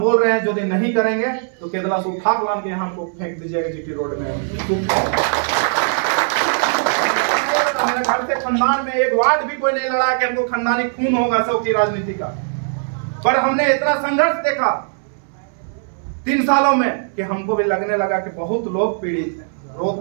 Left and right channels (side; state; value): left; silent; 65 dB below the other